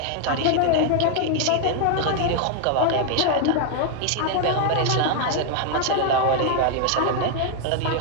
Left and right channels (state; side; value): different; both; correlation 0.00